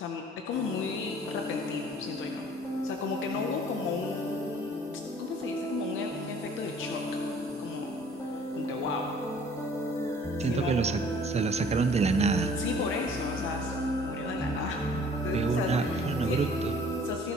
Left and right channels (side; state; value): both; normal; correlation 0.53